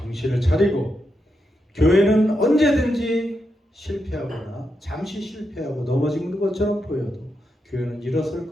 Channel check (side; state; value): both; normal; correlation 0.85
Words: 정신을 차리고, 교회는 언제든지 실패하거나 잠시 실패하고 넘어지는 것처럼 보여도 교회는 일어설